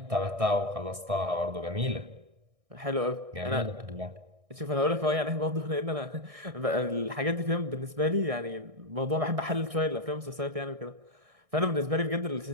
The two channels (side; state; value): left; late; 1.6 ms